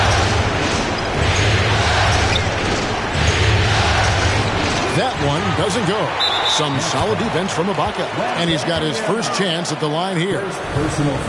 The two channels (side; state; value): both; identical; correlation 1.00